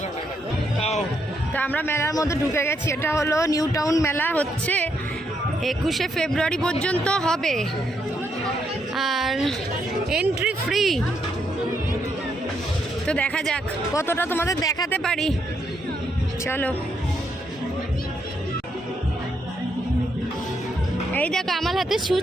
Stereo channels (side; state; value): both; normal; correlation 0.77